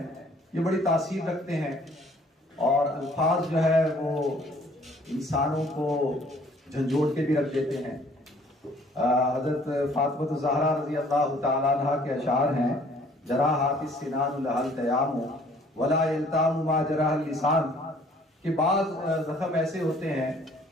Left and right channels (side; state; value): both; normal; correlation 0.57